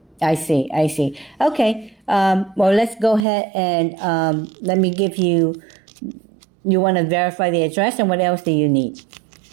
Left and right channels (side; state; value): left; drops out; at 3.2 s